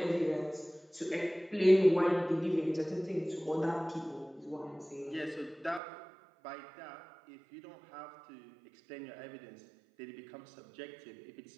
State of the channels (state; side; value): drops out; left; at 5.8 s